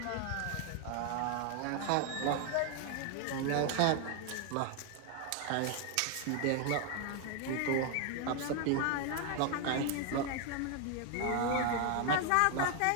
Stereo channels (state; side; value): different; both; correlation 0.01